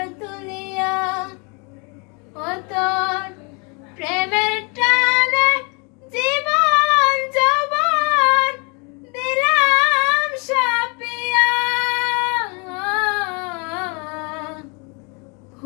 তুলিয়া। ও তোর প্রেমের টানে জীবন যৌবন দিলাম সাপিয়া,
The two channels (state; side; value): quieter; right; 32.9 dB